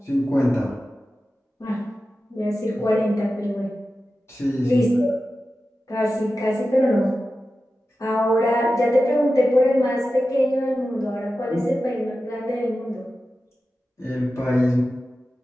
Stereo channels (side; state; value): both; normal; correlation 0.93